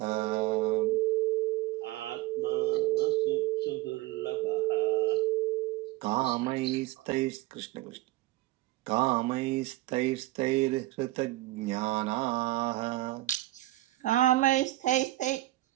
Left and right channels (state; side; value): quieter; left; 17.6 dB